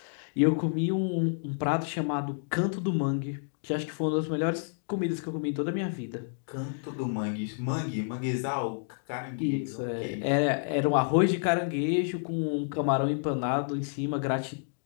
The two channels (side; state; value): right; silent; digital silence